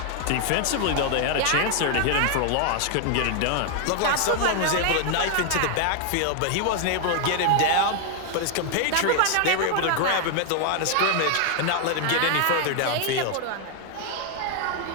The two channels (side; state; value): both; different; correlation 0.00